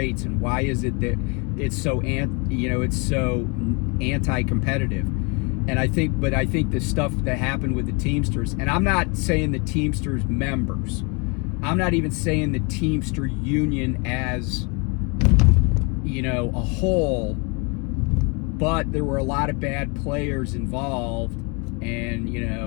and why is it that it's so anti-competitive? And I think the stuff that happened with the Teamsters, and I'm not saying the Teamsters members, I'm not even saying the Teamster union as a whole, but there were a lot of bad players involved, and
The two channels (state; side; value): quieter; right; 32.0 dB